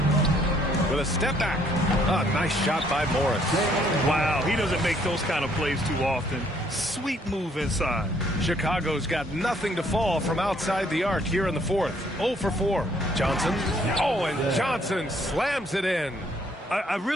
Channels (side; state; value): both; normal; correlation 0.65